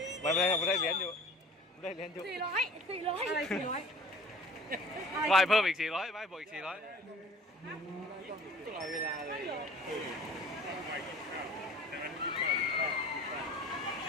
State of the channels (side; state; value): both; normal; correlation 0.47